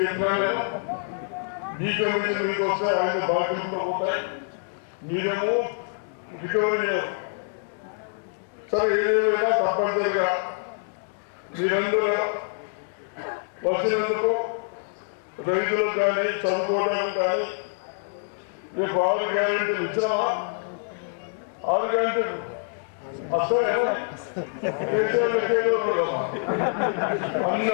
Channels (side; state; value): right; silent; digital silence